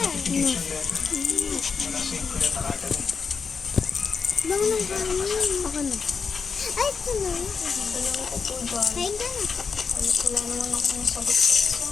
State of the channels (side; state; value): right; quieter; 5.5 dB